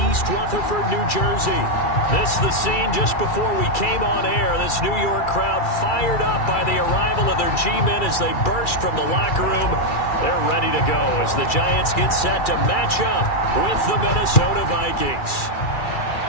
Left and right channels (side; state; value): right; late; 2.3 ms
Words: East Rutherford, New Jersey. This is the scene just before we came on air. This New York crowd fired up by the arrival of their G-men as they burst from the locker room. They're ready to go as the Giants get set to match up with the Minnesota Vikings.